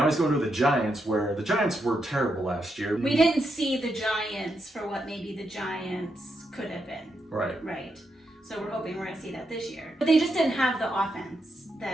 he's going to the Giants, where the Giants were terrible last year. We didn't see the Giants for what maybe the Giants could have been. Right. So we're hoping we're going to see that this year. But they just didn't have the offense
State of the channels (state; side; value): normal; both; correlation 0.82